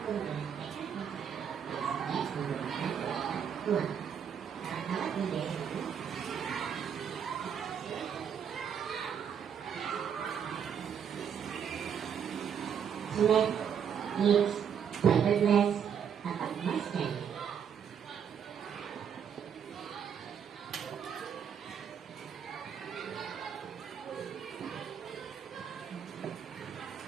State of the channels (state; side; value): quieter; left; 7.9 dB